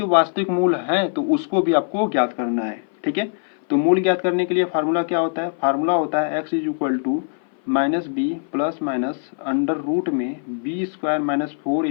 वास्तविक मूल हैं तो उसको भी आपको ज्ञात करना है, ठीक है। तो मूल ज्ञात करने के लिए फार्मूला क्या होता है, फार्मूला होता है x is equal to minus B plus minus under root में b² माइनस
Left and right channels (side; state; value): right; silent; 58 dB below the other